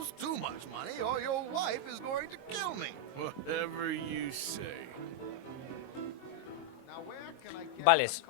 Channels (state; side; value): late; right; 22 ms